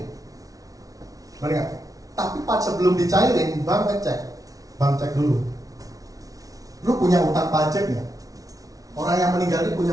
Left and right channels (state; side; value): late; left; 0.18 ms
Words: Benar nggak? Tapi sebelum dicairin, bank cek dulu. Lu punya utang pajak nggak? Orang yang meninggal ini